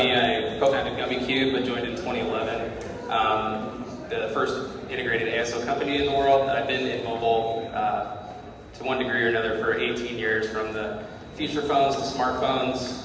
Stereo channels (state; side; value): identical; both; correlation 1.00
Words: I co-founded Gummicube. I joined in 2011. The first integrated ASO company in the world. I've been in mobile to one degree or another for 18 years, from the feature phones to